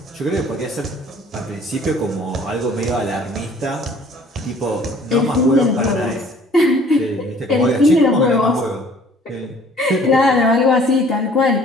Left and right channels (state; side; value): normal; both; correlation 0.54